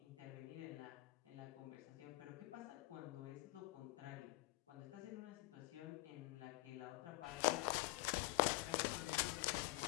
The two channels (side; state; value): right; quieter; 21.7 dB